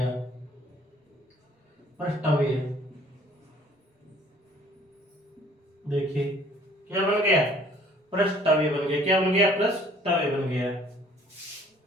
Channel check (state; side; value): normal; both; correlation 0.56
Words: प्रष्टवीय। देखिए क्या बन गया, प्रष्टवीय बन गया। क्या बन गया, प्रष्टवीय बन गया।